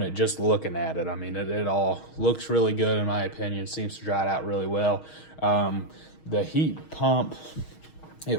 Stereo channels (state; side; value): late; right; 6.4 ms